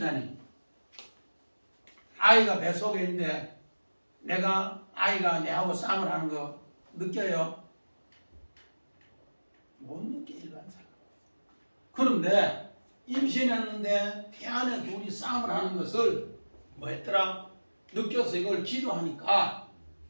아이가 뱃속에 있는데 내가 아이가 내하고 싸움을 하는 거 느껴요? 못 느껴, 일반 사람. 그런데 임신했는데 태 안에 둘이 싸움을 하는 것을 뭐 했더라? 느껴서 이걸 기도하니까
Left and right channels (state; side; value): inverted; both; correlation -1.00